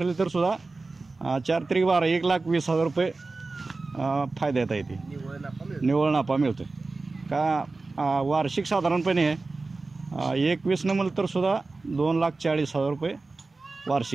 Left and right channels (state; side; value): quieter; left; 3.6 dB